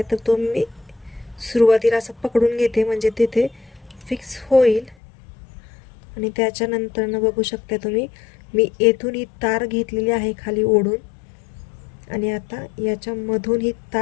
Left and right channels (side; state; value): right; drops out; at 5.0 s